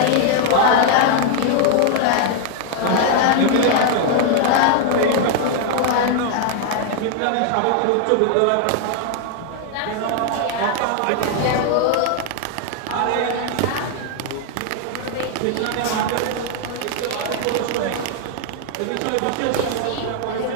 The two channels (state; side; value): different; both; correlation 0.00